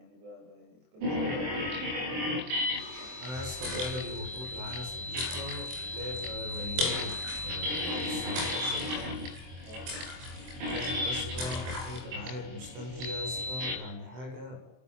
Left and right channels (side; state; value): left; late; 23 ms